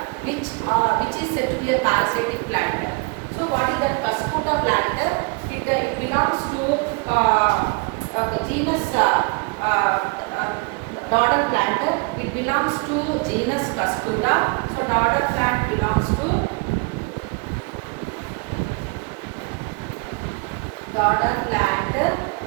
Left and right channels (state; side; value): quieter; left; 30.6 dB